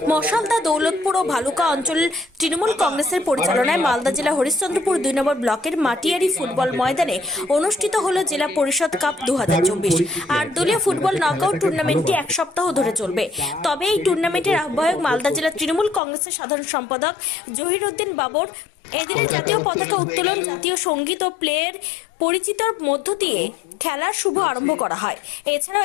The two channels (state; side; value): drops out; right; at 16.0 s